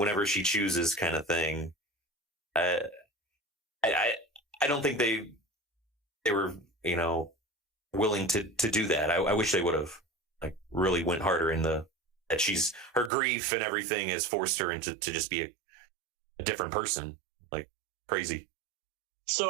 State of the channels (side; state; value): left; drops out; at 13.1 s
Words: she chooses, kind of thing. I don't think they were, you know, willing to do that. I wish they would have, like, really went harder in that her grief and everything has forced her into to just be a different person, like, crazy.